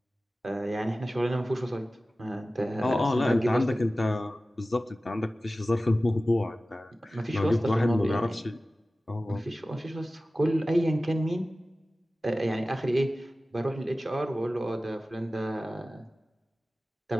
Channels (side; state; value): both; normal; correlation 0.96